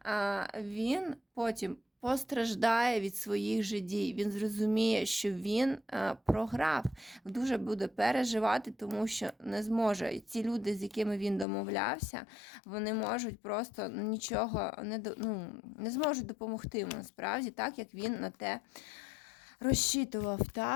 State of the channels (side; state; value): right; drops out; at 11.5 s